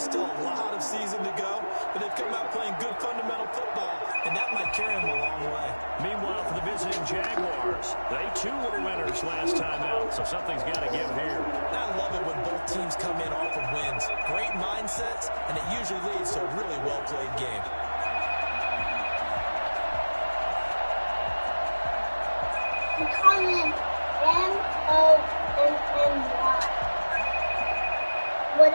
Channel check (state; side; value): inverted; both; correlation -1.00